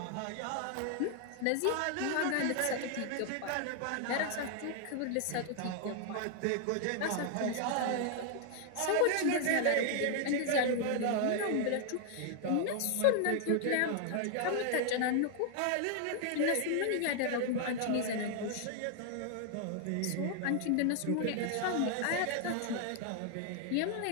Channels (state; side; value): different; both; correlation 0.00